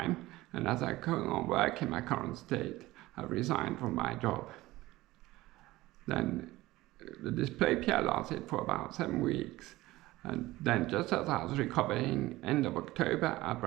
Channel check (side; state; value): left; quieter; 18.2 dB